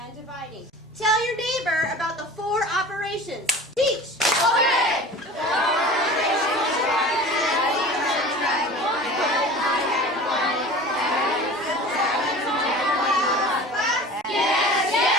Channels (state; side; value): normal; both; correlation 0.39